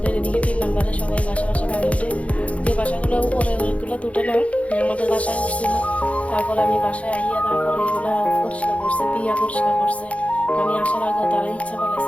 এদিকে 3 নম্বরে সবাই বাসা পানি উঠে। যে বাসাগুলো উপরে ওইগুলো তুটে না, আমাদের বাসায় উঠছিল। তারপরে আমি বাসায় আইয়া তারপরে এগুলো পরিষ্কার করছে, পিয়া পরিষ্কার করছে। আমি আসার আগে তারা ইচ্ছা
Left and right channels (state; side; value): late; right; 0.065 ms